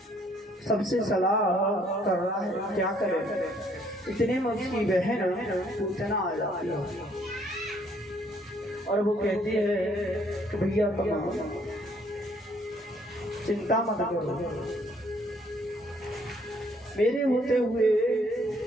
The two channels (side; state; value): both; normal; correlation 0.65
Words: सबसे सलाह कर रहा है क्या करे। इतने में उसकी बहन पूछना आ जाती है और वो कहती है कि भैया तुम चिंता मत करो, मेरे होते हुए